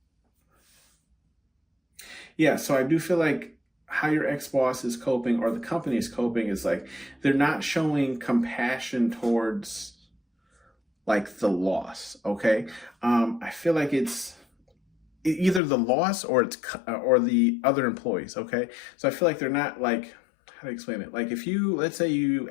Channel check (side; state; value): right; drops out; at 15.6 s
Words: Yeah, so I do feel like how your ex-boss is coping or the company is coping is like they're not showing compassion towards like the loss. Okay. I feel like it's either the loss or or the other employees. Okay. So I feel like they're not like, how to explain it? Like if let's say you